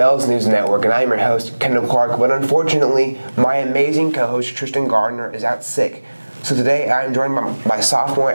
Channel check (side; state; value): both; inverted; correlation -1.00